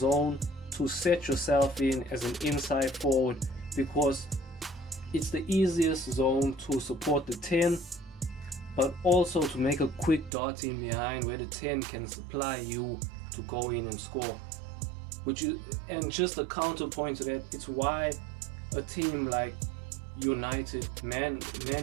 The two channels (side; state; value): left; drops out; at 10.3 s